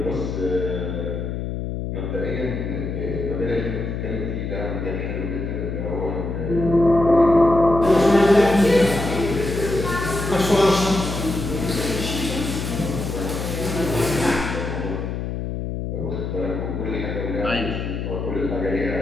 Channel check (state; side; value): noise; left; hum, 4 dB below the sound